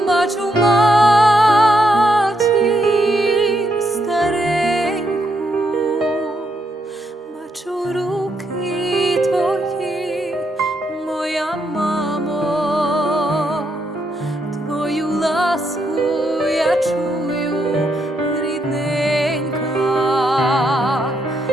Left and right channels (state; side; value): normal; both; correlation 0.78